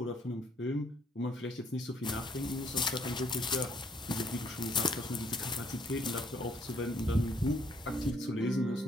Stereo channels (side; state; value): both; normal; correlation 0.66